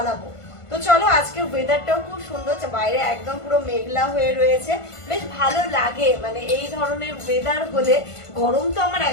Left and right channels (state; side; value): late; right; 1.5 ms